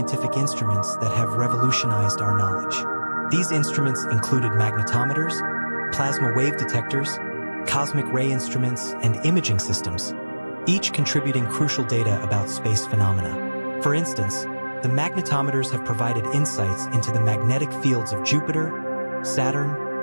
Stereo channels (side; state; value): both; inverted; correlation -1.00